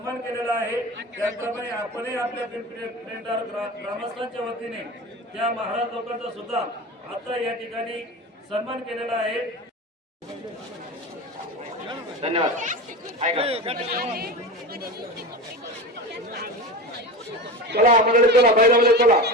केलेला आहे. त्याचप्रमाणे आपणही आपल्या पिंपरी पेंढार ग्रामस्थांच्या वतीने त्या महाराज लोकांचा सुद्धा आता या ठिकाणी सन्मान केलेला आहे. धन्यवाद. चला मंडळी चला बैलामध्ये चला.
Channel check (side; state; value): both; normal; correlation 0.27